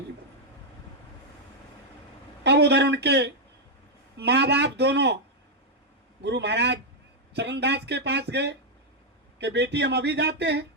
बन। अब उधर उनके माँ बाप दोनों गुरु महाराज चरणदास के पास गए कि बेटी हम अभी जाते हैं।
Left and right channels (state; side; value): normal; both; correlation -0.01